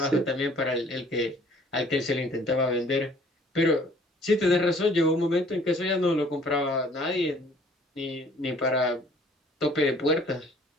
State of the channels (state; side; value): normal; both; correlation 0.56